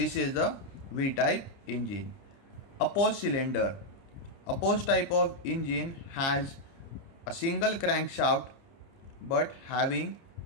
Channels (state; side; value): late; right; 30 ms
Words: is the V-type engine. Opposed cylinder. Opposed type of engine has a single crankshaft but having